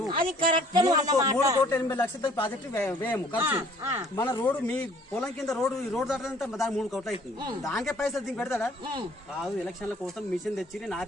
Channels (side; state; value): both; normal; correlation 0.56